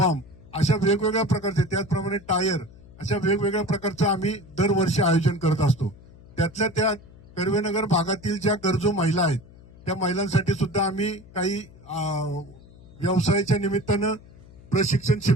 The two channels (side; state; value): left; noise; hum, 22 dB below the sound